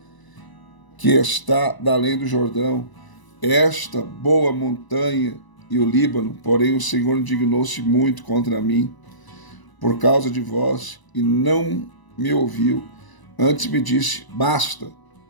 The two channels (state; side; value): late; right; 1.0 ms